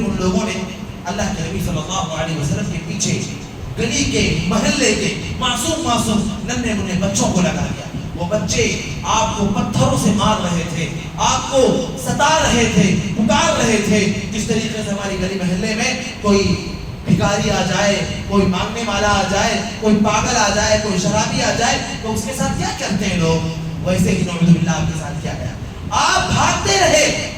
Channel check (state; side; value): identical; both; correlation 1.00